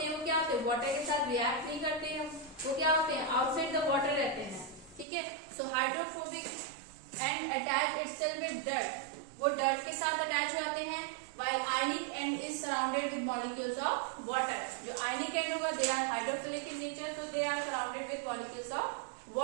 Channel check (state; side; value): drops out; left; at 5.1 s